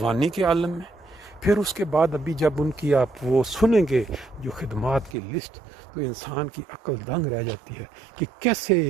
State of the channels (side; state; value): left; drops out; at 5.2 s